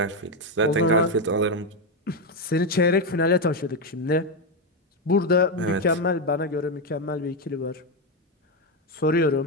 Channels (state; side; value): normal; both; correlation 0.07